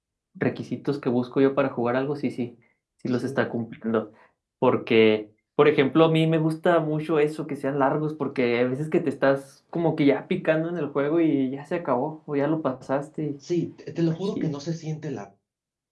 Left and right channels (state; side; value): identical; both; correlation 1.00